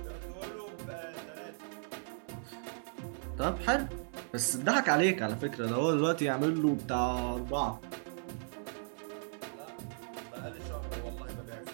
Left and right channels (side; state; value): left; silent; digital silence